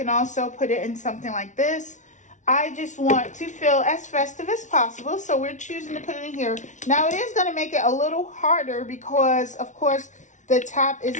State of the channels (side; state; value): right; late; 0.36 ms